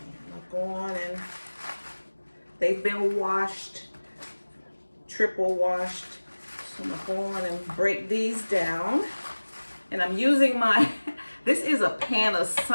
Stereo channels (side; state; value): both; inverted; correlation -1.00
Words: I'll go on and they've been washed, triple washed. So I'm gonna go on and break these down. And I'm using this is a